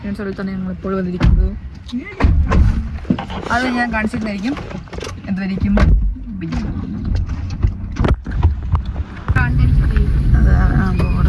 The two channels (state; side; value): identical; both; correlation 1.00